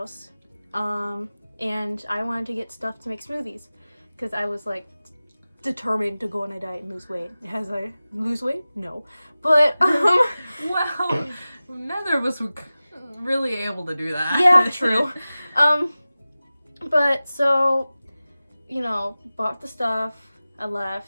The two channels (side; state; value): both; inverted; correlation -0.97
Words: and I wanted to get stuff to make smoothies, because I was like determined to go on a diet and lose weight. As I lose weight? No. But, well, neither of us were really able to do that. Yeah, true. But so, bought the stuff, I